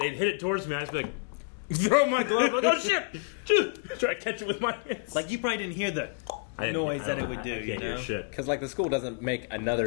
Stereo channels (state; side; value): quieter; right; 38.5 dB